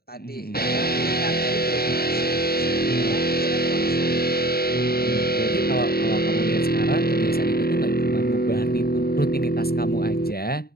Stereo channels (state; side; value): late; right; 0.45 ms